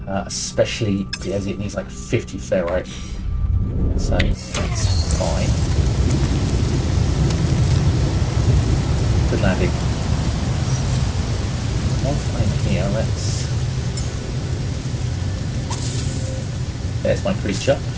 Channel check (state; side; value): identical; both; correlation 1.00